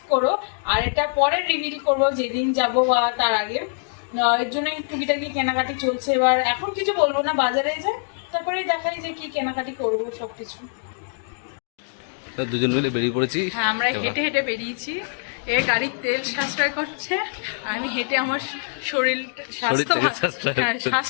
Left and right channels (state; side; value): silent; right; digital silence